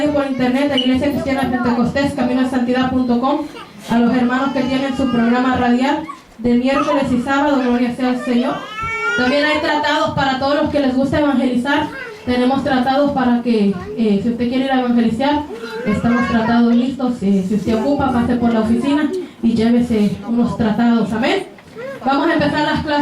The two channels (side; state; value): both; identical; correlation 1.00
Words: por internet de Iglesia Cristiana Pentecostés, CaminoDeSantidad.com, a los hermanos que tienen su programa radial de miércoles y sábado, gloria sea al Señor. También hay tratados para todos los que les gusta evangelizar. Tenemos tratados para que, si usted quiere ir a evangelizar, estamos tratados listos. Si usted ocupa, pase por la oficina y llévese unos tratados. Amén. Vamos a empezar las